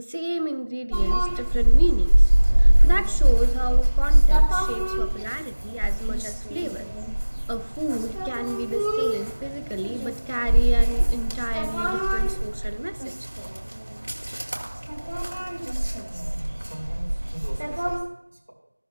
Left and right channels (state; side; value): inverted; both; correlation -1.00